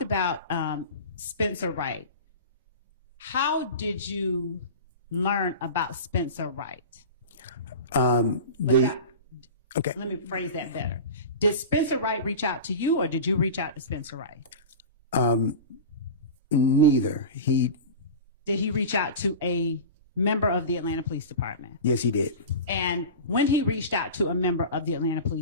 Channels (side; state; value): both; inverted; correlation -0.31